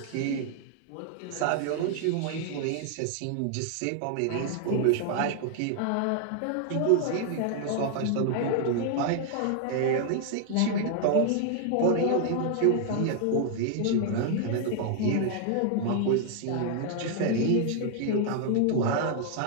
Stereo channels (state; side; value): different; both; correlation 0.00